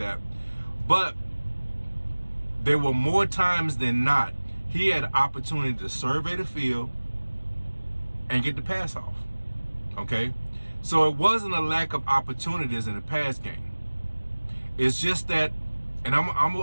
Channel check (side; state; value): both; inverted; correlation -1.00